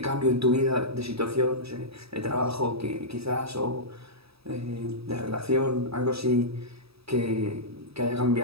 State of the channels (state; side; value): late; left; 0.77 ms